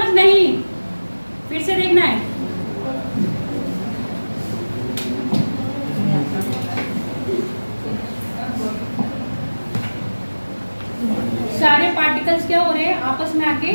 नहीं, फिर से देखना है। सारे पार्टिकल्स क्या हो रहे हैं, आपस में आके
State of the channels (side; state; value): both; inverted; correlation -1.00